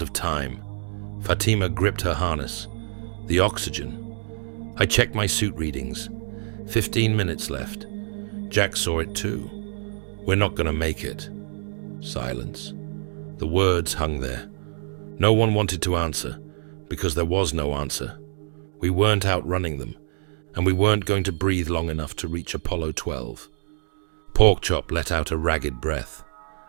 time. Fatima gripped her harness. The oxygen. I checked my suit readings. 15 minutes left. Jack saw it too. We're not going to make it. Silence. The words hung there. No one wanted to answer, because there was no answer. We weren't outrunning them, and we weren't going to breathe long enough to reach Apollo 12. Porkchop let out a ragged breath.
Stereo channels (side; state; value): left; silent; 61 dB below the other